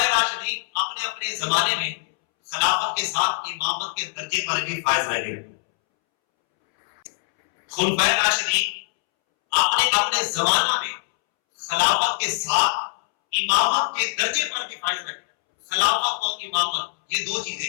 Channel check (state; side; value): silent; right; 63 dB below the other